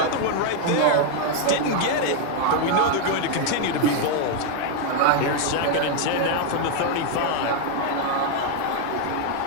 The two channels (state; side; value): different; both; correlation 0.01